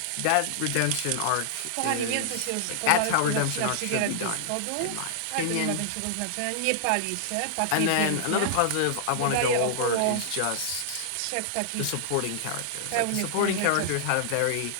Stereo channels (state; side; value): different; both; correlation -0.01